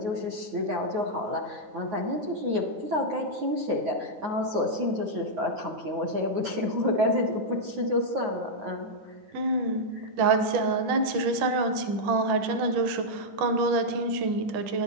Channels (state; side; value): late; left; 10 ms